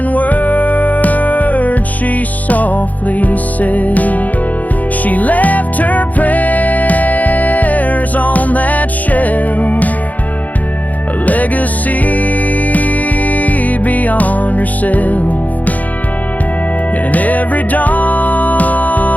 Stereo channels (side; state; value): right; late; 0.077 ms